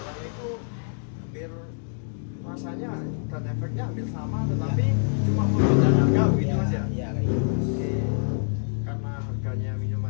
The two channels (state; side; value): silent; right; digital silence